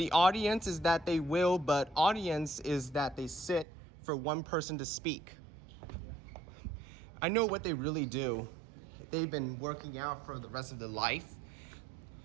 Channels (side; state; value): left; drops out; at 3.7 s